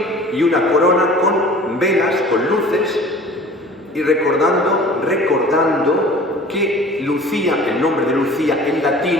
y una corona con velas, con luces, y recordando que Lucía, el nombre de Lucía en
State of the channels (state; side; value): normal; both; correlation 0.45